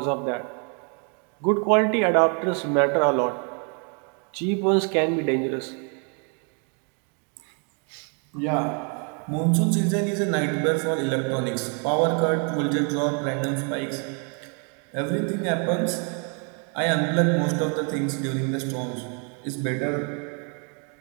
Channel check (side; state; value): left; quieter; 38.4 dB